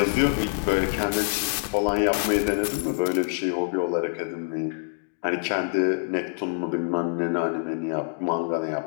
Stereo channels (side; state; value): right; silent; digital silence